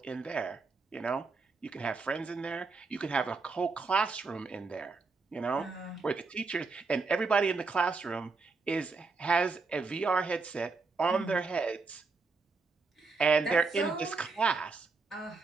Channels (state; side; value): quieter; left; 4.2 dB